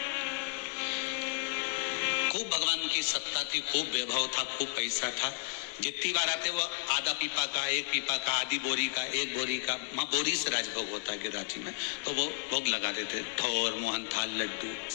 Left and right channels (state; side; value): silent; right; digital silence